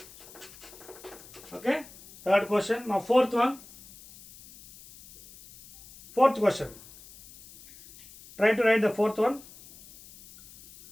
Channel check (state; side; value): noise; left; hiss, 21 dB below the sound